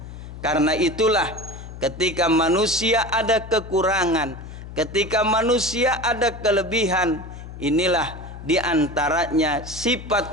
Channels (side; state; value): left; noise; hum, 12 dB below the sound